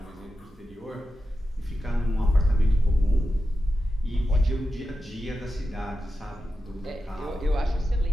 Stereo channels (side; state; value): both; normal; correlation 0.91